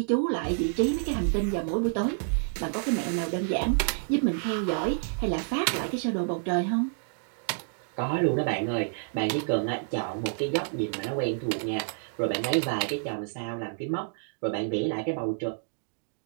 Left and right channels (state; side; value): silent; left; digital silence